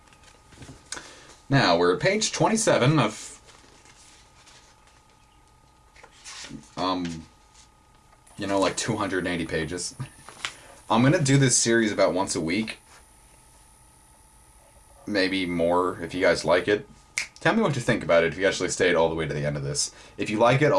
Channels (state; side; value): identical; both; correlation 1.00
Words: Now, we're at page 27 of like 280 pages. I'm going to do this series about once a week. Maybe more if you guys like it. Tell me what you think about it if you actually stayed all the way to the end of this. If you like it,